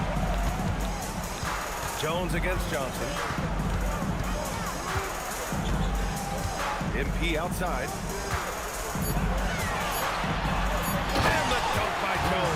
Jones against Johnson. MP outside. And the dunk by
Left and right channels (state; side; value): identical; both; correlation 1.00